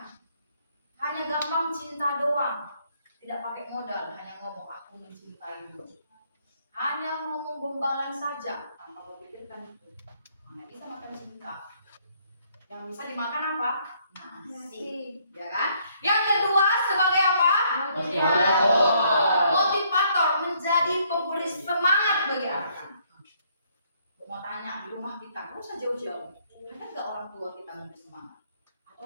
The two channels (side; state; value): both; inverted; correlation -0.67